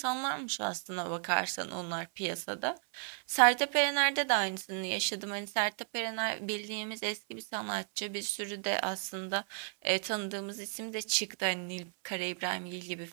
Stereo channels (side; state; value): left; silent; 55 dB below the other